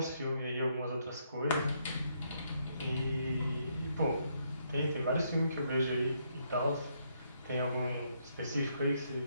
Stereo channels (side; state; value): both; inverted; correlation -0.74